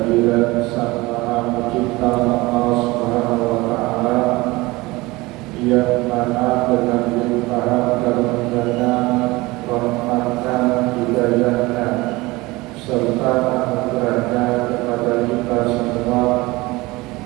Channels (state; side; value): quieter; left; 21.7 dB